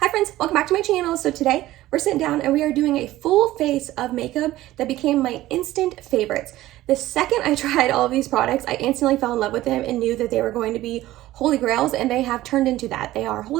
friends, welcome back to my channel. So today we're sitting down and we are doing a full face of makeup that became my instant favorites. The second I tried all of these products, I instantly fell in love with them and knew that they were going to be holy grails, and they have turned into that. They are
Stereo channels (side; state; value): left; quieter; 15.9 dB